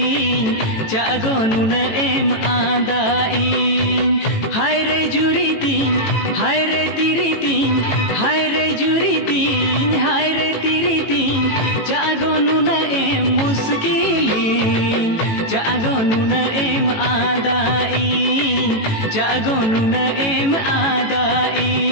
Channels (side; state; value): right; late; 18 ms